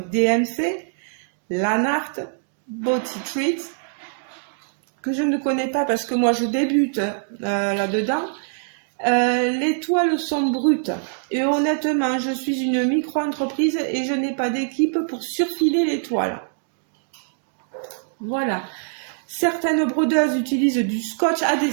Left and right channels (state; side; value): silent; left; digital silence